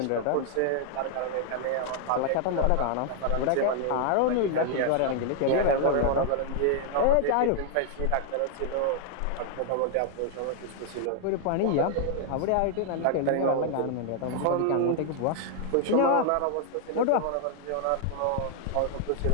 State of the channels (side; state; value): both; different; correlation 0.00